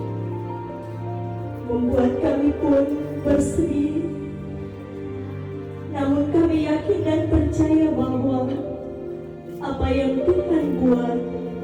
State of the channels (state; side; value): identical; both; correlation 1.00